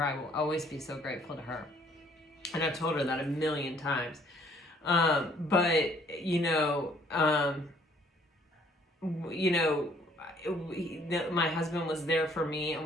I will always be so grateful to her. And I've told her that a million times. But, my husband was there for me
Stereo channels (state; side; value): normal; both; correlation 0.61